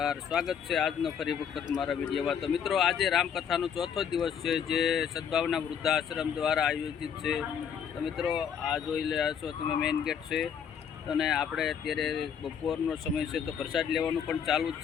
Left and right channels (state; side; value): quieter; right; 7.8 dB